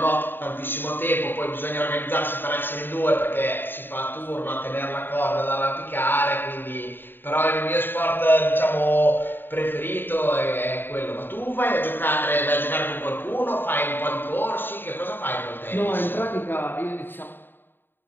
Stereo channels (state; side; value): late; right; 0.095 ms